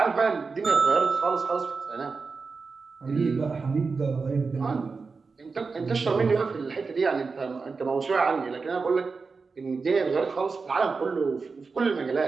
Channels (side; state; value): left; quieter; 4.6 dB